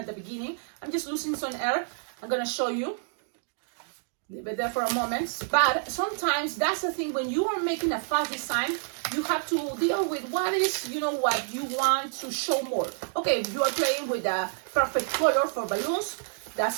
the beginning. I'm just losing some air. I'm gonna show you. Leave it there for a moment. But sometimes that's the thing, when you are making a fast design, you have to deal with what is, you know, what you want to show more. Okay, if you are playing with a perfect color for balloons,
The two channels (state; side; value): silent; left; digital silence